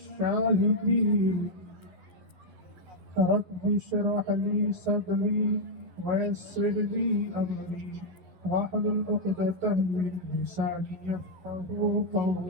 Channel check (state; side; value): late; left; 11 ms